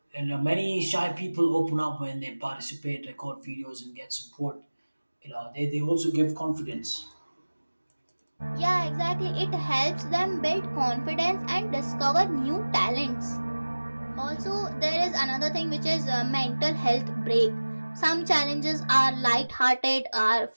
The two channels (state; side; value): inverted; both; correlation -1.00